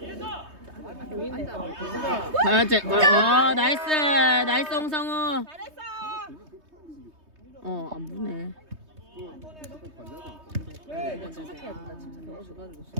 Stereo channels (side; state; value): left; late; 3.2 ms